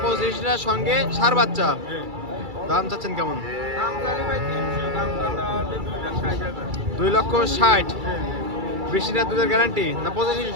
25টা সঙ্গে ষাঁড় বাচ্চা। হ্যাঁ। দাম চাচ্ছেন কেমন? দাম জানি ভাই 300, দাম না হলে 2,60,000 2,60,000। হ্যাঁ 20টা দুধের গ্যারান্টি না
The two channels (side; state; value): left; late; 2.3 ms